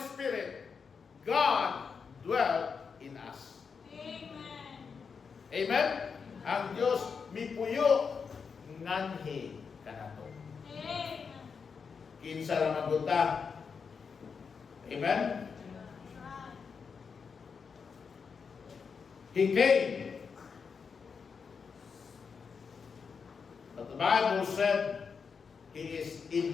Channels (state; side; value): quieter; right; 5.8 dB